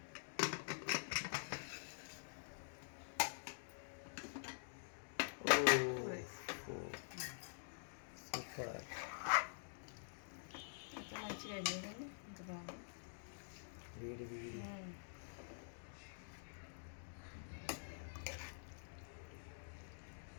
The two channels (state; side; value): silent; right; digital silence